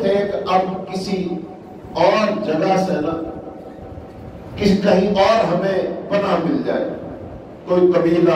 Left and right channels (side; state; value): both; identical; correlation 1.00